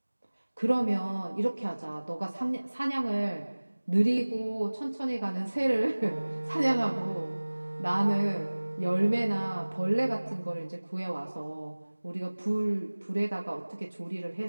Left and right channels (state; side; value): inverted; both; correlation -1.00